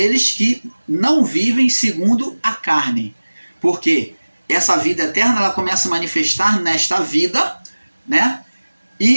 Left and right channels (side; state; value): both; inverted; correlation -1.00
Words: que não vivem segundo a carne. Porque essa vida eterna ela começa a manifestar nesta vida, né?